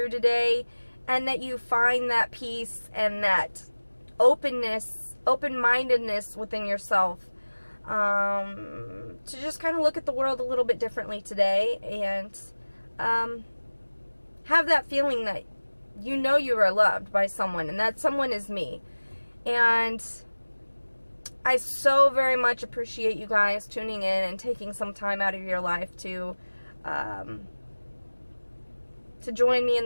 today, and that you find that peace and that openness, open-mindedness within yourself, to just kind of look at the world a little bit differently today, and have that feeling that you know you are loved by someone, and that someone is me. And I so very much appreciate you guys tuning in and taking some time out of your life to join me in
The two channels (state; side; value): inverted; both; correlation -1.00